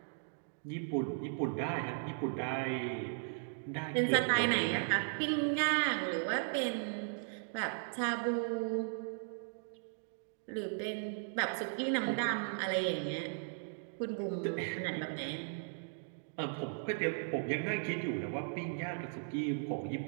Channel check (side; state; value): left; silent; digital silence